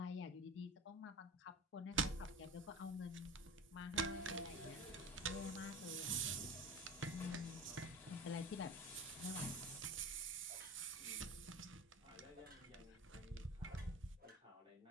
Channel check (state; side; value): normal; both; correlation 0.33